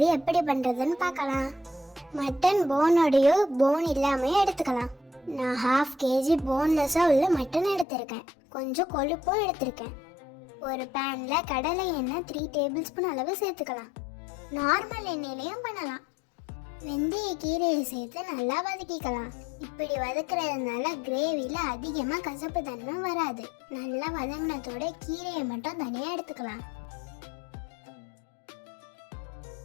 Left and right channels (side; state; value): right; drops out; at 7.9 s